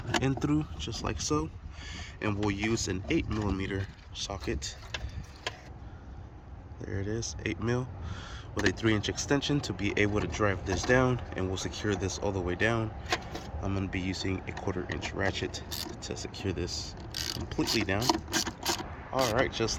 in through, just like so. And we'll use an 8mm socket. There it is, 8mm with a 3-inch extension to be able to drive this down, and we'll secure this all the way down. I'm going to be using a 1/4-inch ratchet to secure this completely down. Alright,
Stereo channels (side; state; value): both; identical; correlation 1.00